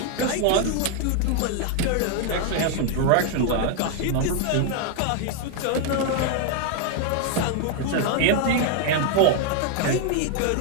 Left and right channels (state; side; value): different; both; correlation 0.00